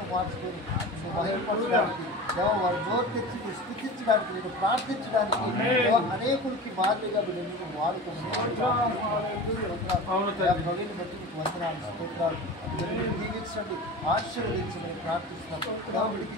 మార్చుకొని మహిమపరచడానికి వారి నోరు తెచ్చి స్థుతించడానికి నేను ప్రార్థించడానికి అనేకులకి మాదిరిగా నేను వాడుకోమని బట్టి మీకు వందనాలు స్తోత్రాలు దీవించండి ఆశీర్వదించమని ప్రార్థిస్తున్నాను. వీడికి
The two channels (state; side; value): normal; both; correlation 0.33